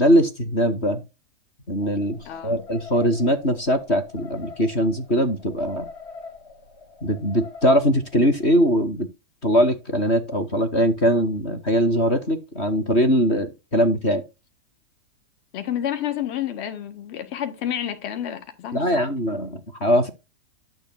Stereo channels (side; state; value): right; late; 3.1 ms